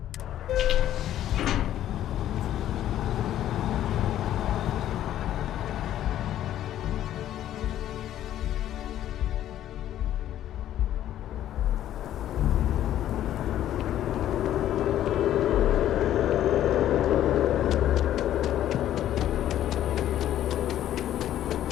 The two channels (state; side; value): quieter; right; 12.0 dB